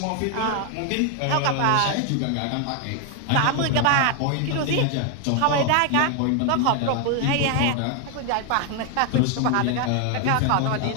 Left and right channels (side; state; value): both; different; correlation 0.00